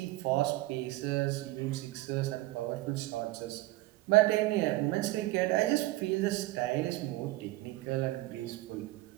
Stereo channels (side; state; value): left; quieter; 18.4 dB